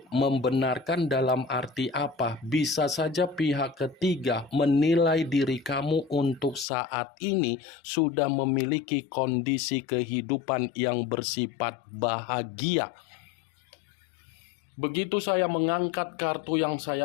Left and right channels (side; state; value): right; drops out; at 6.7 s